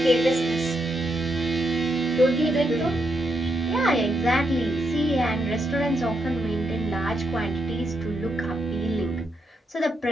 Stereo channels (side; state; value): both; normal; correlation 0.80